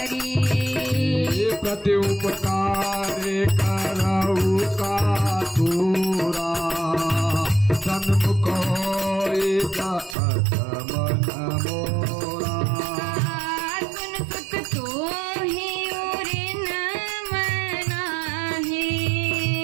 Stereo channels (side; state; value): left; drops out; at 10.2 s